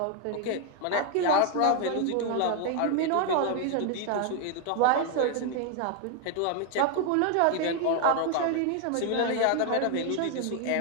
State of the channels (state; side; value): different; both; correlation 0.01